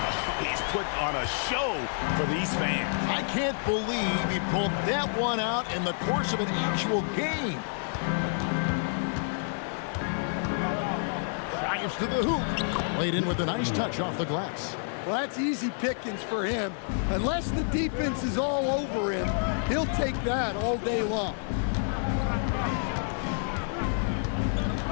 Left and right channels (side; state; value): right; silent; digital silence